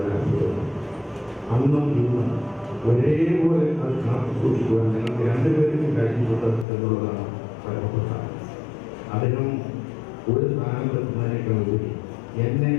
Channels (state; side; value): drops out; right; at 6.7 s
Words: രാഷ്ട്രീയം. അന്നും ഇന്നും ഒരേപോലെ അത് കാത്തു സൂക്ഷിക്കുവാൻ ഞങ്ങൾക്ക് രണ്ടുപേർക്കും കഴിഞ്ഞിട്ടുണ്ട് എന്നുള്ളതാണ് പരമപ്രധാനം. അദ്ദേഹം ഒരു സ്ഥാനത്തെത്തുന്നതിനേക്കാൾ ഉപരി എന്നെ